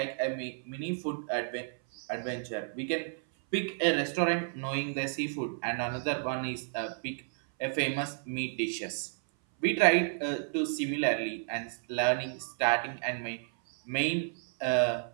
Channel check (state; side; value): silent; left; 57 dB below the other